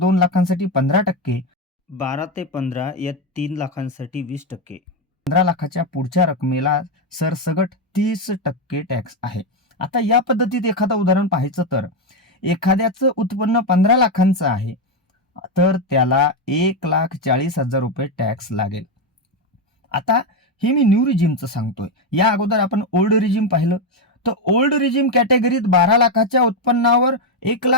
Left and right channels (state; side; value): normal; both; correlation 0.07